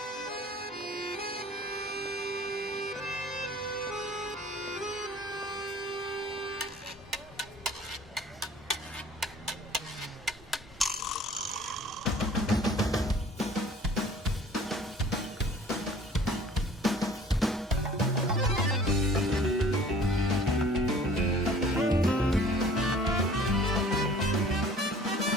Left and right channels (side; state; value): both; normal; correlation 0.50